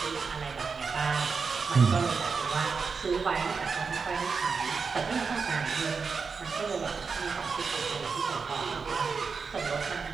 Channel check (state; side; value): quieter; left; 5.2 dB